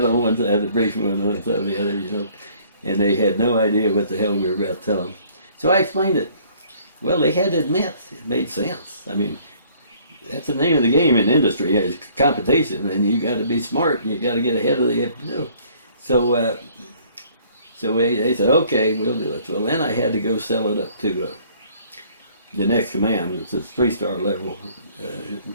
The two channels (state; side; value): inverted; both; correlation -0.58